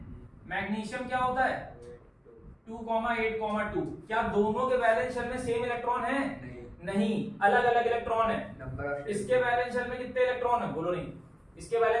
मैग्नीशियम क्या होता है 2,8,2। क्या दोनों के बैलेंस शेल में सेम इलेक्ट्रॉन है? नहीं, अलग अलग इलेक्ट्रॉन है। इसके बैलेंस शेल में कितने इलेक्ट्रॉन है? बोलो नहीं। इसके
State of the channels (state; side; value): identical; both; correlation 1.00